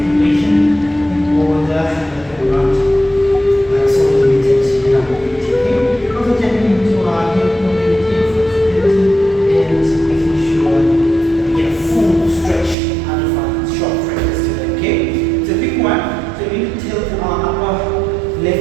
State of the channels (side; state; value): left; drops out; at 12.8 s